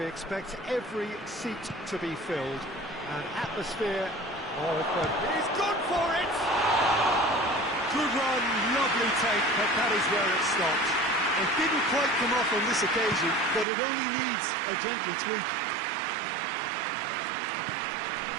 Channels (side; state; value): left; drops out; at 13.7 s